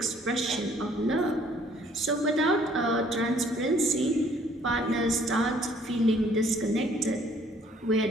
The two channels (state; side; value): normal; both; correlation 0.60